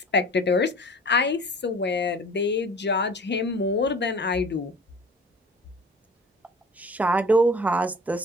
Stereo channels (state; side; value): normal; both; correlation 0.44